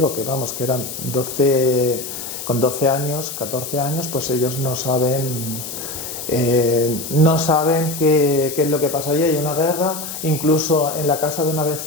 que vamos, que eran con 12 años, 14 años, pues ellos no saben qué es lo que pasa allí. Hay una guerra, incluso en la casa de una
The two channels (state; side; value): noise; left; hiss, 8 dB below the sound